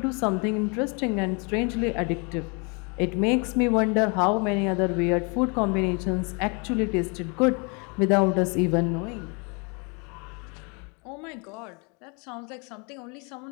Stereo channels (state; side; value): quieter; right; 32.9 dB